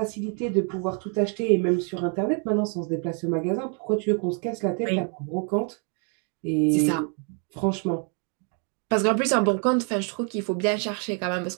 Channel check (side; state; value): left; quieter; 39.7 dB